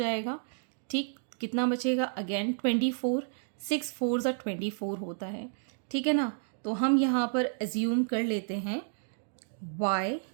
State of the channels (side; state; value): left; silent; digital silence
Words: ठीक, कितना बचेगा, अगेन 24, 6 4s are 24 होता है। ठीक है ना, तो हम यहाँ पर एज्यूम कर लेते हैं y